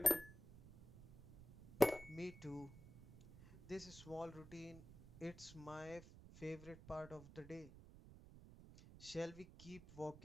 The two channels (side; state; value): right; noise; rumble, 17 dB below the sound